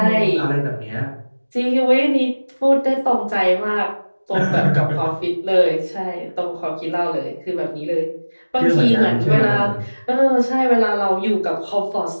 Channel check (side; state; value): both; inverted; correlation -1.00